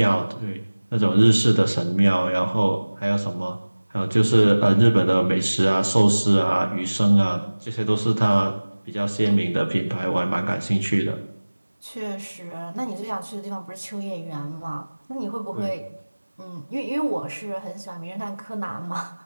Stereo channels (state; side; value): inverted; both; correlation -1.00